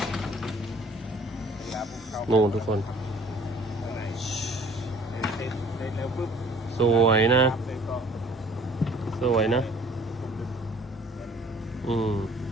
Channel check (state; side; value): normal; both; correlation 0.53